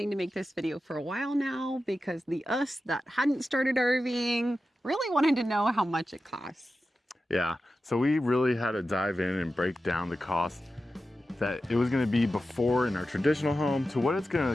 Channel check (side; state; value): both; normal; correlation 0.92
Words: to make this video for a while now because the us that hadn't started RVing really wanted to know how much it costs. Yeah, so we really had to dive in and break down the cost that it was going to be before in our traditional home to what it's going